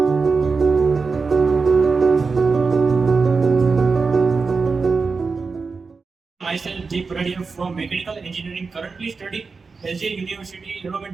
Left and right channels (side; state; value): left; quieter; 4.6 dB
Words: Deep Radia from Mechanical Engineering, currently studying LJ University,